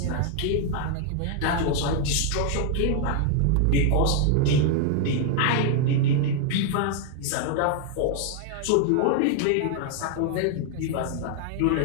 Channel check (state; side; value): different; both; correlation 0.00